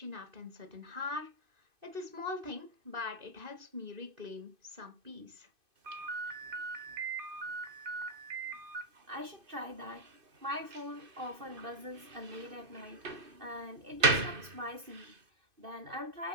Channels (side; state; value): left; late; 2.5 ms